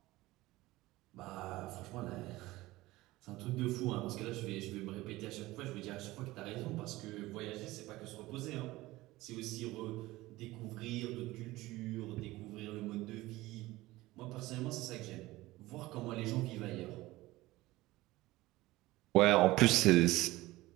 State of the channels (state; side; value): quieter; left; 18.6 dB